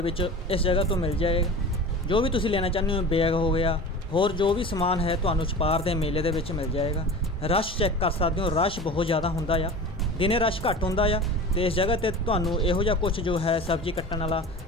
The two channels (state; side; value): normal; both; correlation 0.35